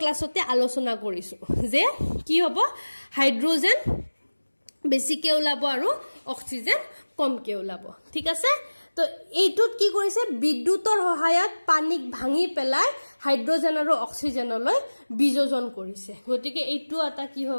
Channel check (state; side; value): inverted; both; correlation -1.00